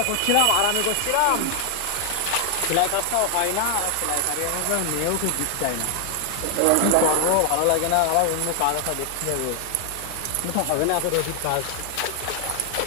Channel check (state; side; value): different; both; correlation 0.00